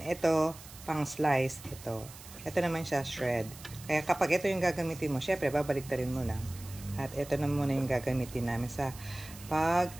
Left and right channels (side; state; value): right; noise; hiss, 17 dB below the sound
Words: Ito, pang slice. Ito naman siya shred. Kaya kapag ito yung gagamitin mo, syempre, babaliktarin mo lang. At ito na muna yung gagamitin namin sa